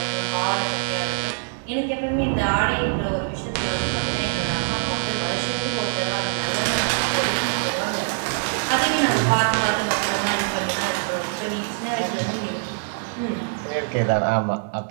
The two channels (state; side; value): silent; left; 63 dB below the other